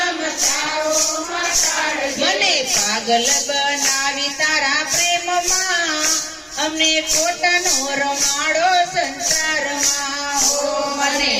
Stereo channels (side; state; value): both; identical; correlation 1.00